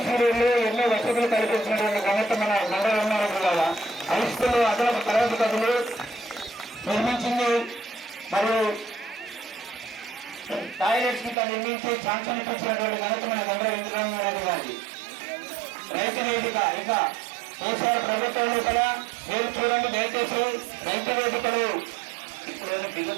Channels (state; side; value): drops out; left; at 11.4 s